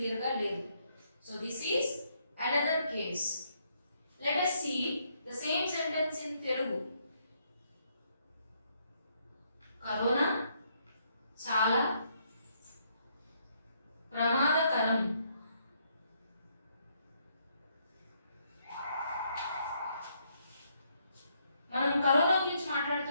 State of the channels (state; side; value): inverted; both; correlation -0.73